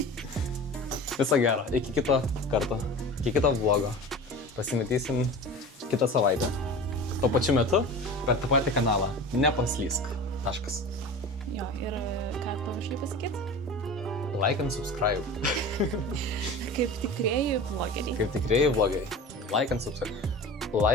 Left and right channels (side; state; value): both; normal; correlation 0.35